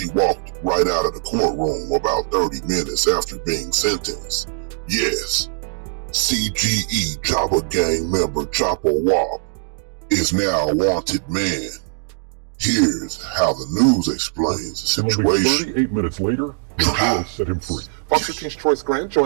walked right out of the courtroom about 30 minutes after being sentenced. Yes, CGE Chopper Gang member Chopper Wop is now a wanted man. Here's how the news explains the situation. 38 minutes later, the jail set him free. Fox 13's Troyce Grant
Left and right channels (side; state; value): left; silent; digital silence